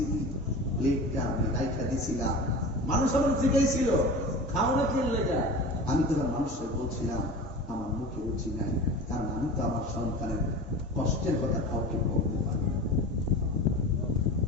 প্লেটটা আমি রাইখা দিছিলাম, মানুষ আমার জিজ্ঞাসিল খাও না কি লেগা, আমি তখন মানুষের বলছিলাম আমার মুখে রুচি নাই, কারণ আমি তো আমার সন্তানের কষ্টের কথা কাউকে বলতে পারি।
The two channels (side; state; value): both; normal; correlation 0.34